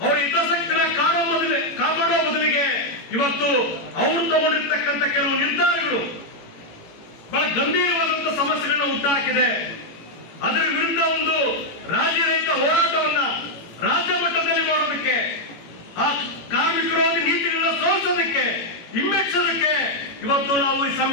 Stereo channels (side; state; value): right; late; 18 ms